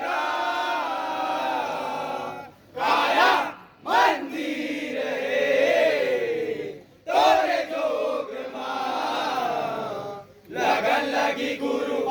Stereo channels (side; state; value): both; identical; correlation 1.00